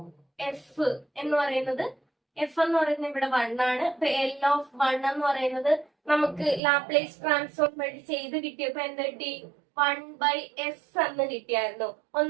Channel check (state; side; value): drops out; left; at 6.6 s